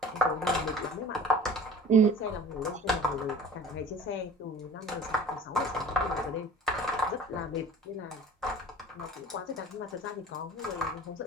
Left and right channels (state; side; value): normal; both; correlation 0.43